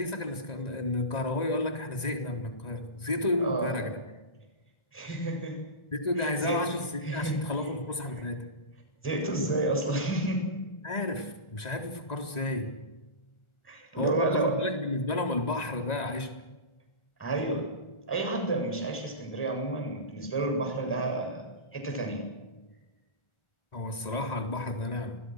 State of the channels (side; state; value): right; late; 1.9 ms